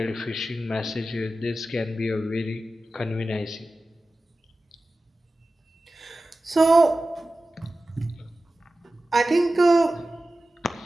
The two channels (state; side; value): normal; both; correlation 0.95